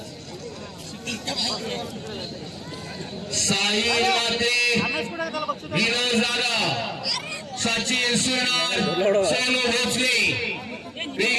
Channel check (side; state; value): both; identical; correlation 1.00